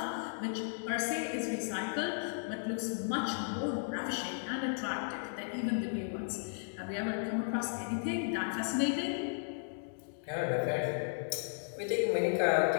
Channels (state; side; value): silent; right; digital silence